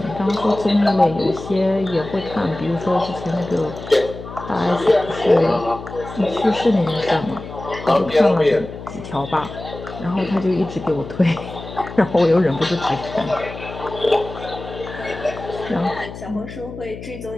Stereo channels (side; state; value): left; noise; hum, 12 dB below the sound